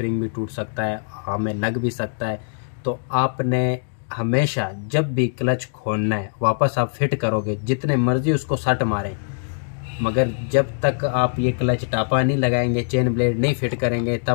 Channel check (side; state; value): right; silent; digital silence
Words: भी टूट सकता है, हमें लग भी सकता है। तो आपने हमेशा जब भी क्लच खोलना है वापस आप फिट करोगे, जितने मर्जी उसको सट मारें, मगर जब तक आप ये क्लच टापा नहीं लगाएंगे, चेन ब्लेड नहीं फिट करेंगे,